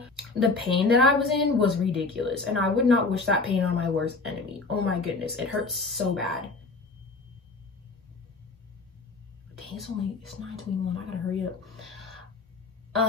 The pain that I was in was ridiculous. And I would not wish that pain on my worst enemy. Oh my goodness, it hurts so bad. Dang, it's 9:21, I gotta hurry up.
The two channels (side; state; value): right; quieter; 3.8 dB